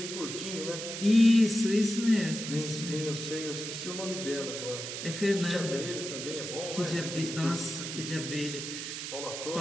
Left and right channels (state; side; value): noise; right; hiss, 6 dB below the sound